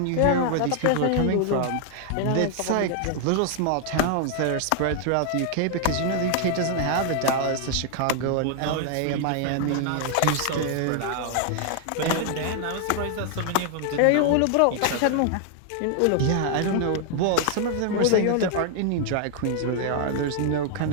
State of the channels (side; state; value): both; different; correlation 0.00